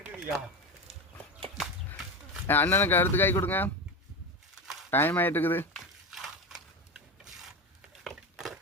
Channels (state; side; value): normal; both; correlation 0.21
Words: அண்ணனுக்கு அடுத்த காய் கொடுங்க, டைம் ஆகிட்டு இருக்குது.